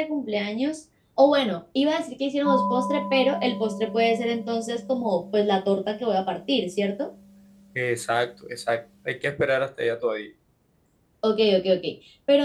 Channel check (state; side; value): identical; both; correlation 1.00